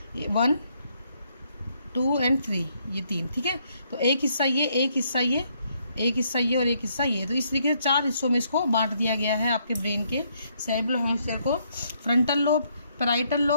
1, 2 एंड 3, ये 3, ठीक है। तो एक हिस्सा ये, एक हिस्सा ये, एक हिस्सा ये और एक हिस्सा ये। तो इस तरीके से 4 हिस्सों में इसको बांट दिया गया है आपके ब्रेन के सेरेब्रल हेमिस्फीयर को। Frontal lobe, parietal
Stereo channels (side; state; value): both; inverted; correlation -0.72